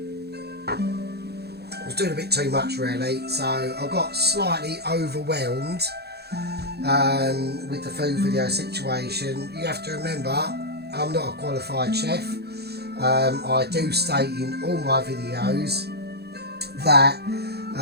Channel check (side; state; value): left; late; 0.47 ms